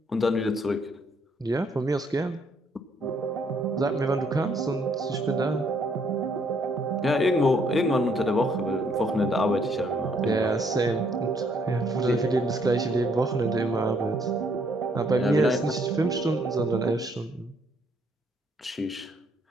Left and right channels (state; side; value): normal; both; correlation 0.68